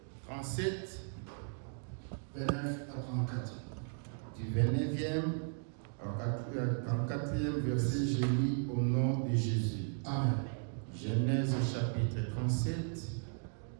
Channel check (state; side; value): silent; left; 54 dB below the other